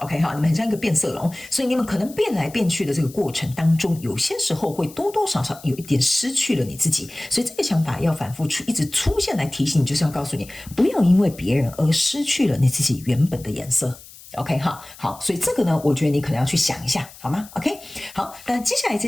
你们很像一个变色龙，所以你们可能变来变去的这个过程当中，有些时候会多多少少有一点失去了你自己。所以这个想法要反复一直出现来提醒你，就是要告诉你，不要因为别人而失去了你自己原本的颜色。OK 好，所以这个呢，我觉得你可能要去想一下，好吗 ？OK， 好，那接下来这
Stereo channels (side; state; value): left; noise; hiss, 19 dB below the sound